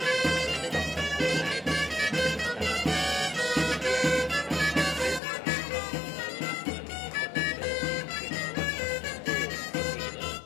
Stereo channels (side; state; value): right; drops out; at 5.2 s